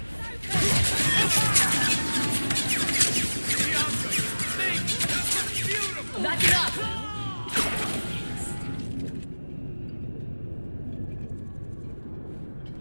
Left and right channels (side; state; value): both; inverted; correlation -1.00